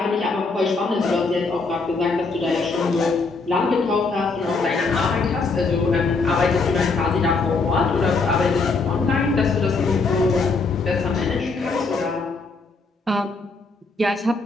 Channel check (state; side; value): quieter; right; 4.0 dB